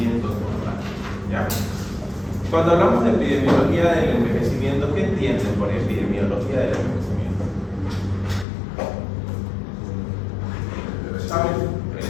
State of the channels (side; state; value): right; drops out; at 8.5 s